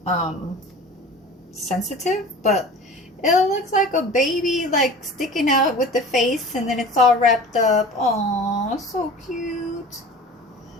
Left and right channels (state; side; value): normal; both; correlation 0.39